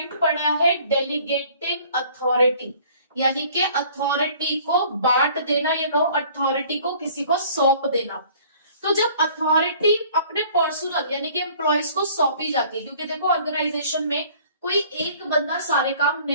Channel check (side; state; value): both; inverted; correlation -0.53